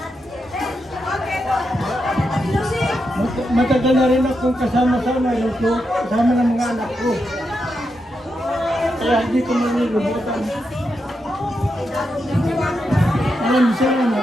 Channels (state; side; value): normal; both; correlation 0.85